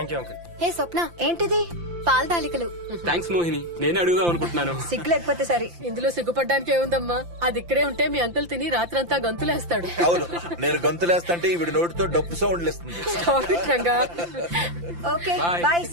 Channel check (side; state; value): left; late; 5.8 ms